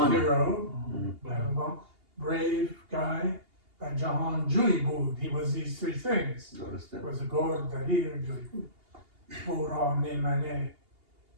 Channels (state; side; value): late; left; 2.8 ms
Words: hero, Pehlevan, brave guy, and Jahan Juibud, he was these three things. درسته. Was a Gord, Dalir, Juibud. Ura, Meimane.